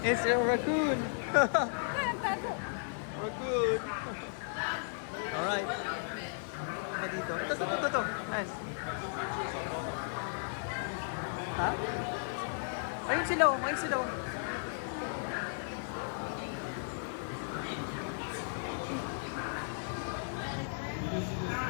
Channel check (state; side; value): silent; right; digital silence